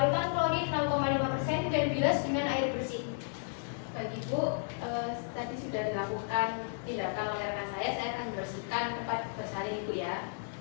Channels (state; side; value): silent; right; digital silence